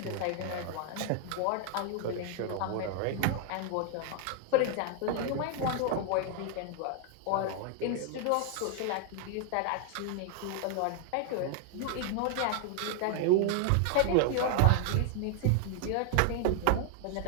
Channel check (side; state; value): both; different; correlation 0.00